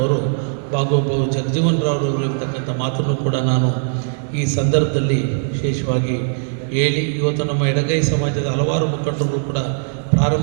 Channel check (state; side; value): silent; left; digital silence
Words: ಬಾಬು ಜಗಜೀವನರಾವ್ರವರು ಇರ್ತಕ್ಕಂಥ ಮಾತನ್ನು ಕೂಡ ನಾನು ಈ ಸಂದರ್ಭದಲ್ಲಿ ವಿಶೇಷವಾಗಿ ಹೇಳಿ, ಇವತ್ತು ನಮ್ಮ ಎಡಗೈ ಸಮಾಜದ ಹಲವಾರು ಮುಖಂಡರು ಕೂಡ